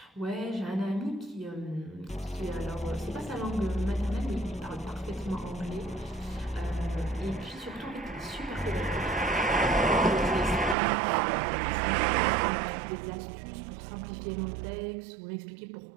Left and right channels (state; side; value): drops out; left; at 10.8 s